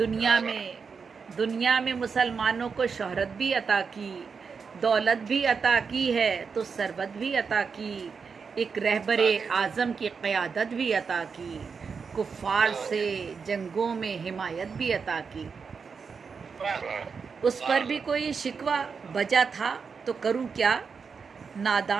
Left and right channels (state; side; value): quieter; left; 5.6 dB